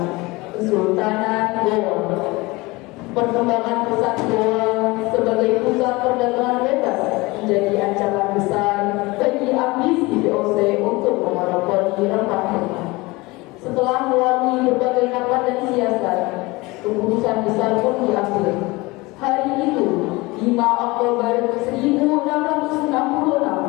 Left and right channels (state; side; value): quieter; right; 22.8 dB